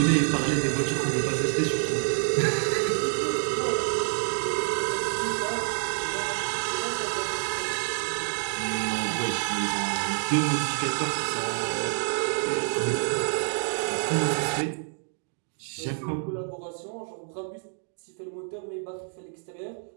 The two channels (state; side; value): silent; left; 57 dB below the other